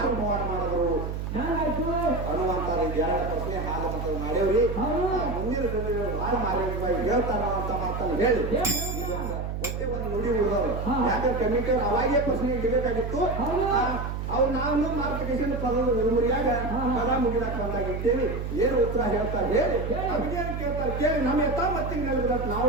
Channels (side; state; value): right; noise; hum, 4 dB below the sound